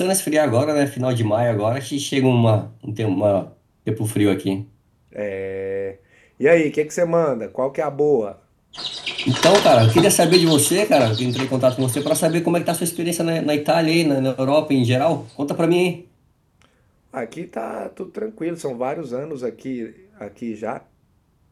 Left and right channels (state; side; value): identical; both; correlation 1.00